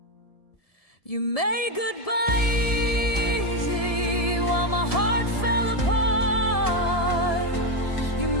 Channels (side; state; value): right; late; 1.7 ms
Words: You made goodbye easy while my heart fell apart. You